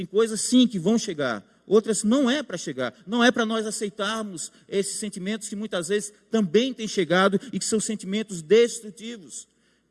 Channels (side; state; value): both; identical; correlation 1.00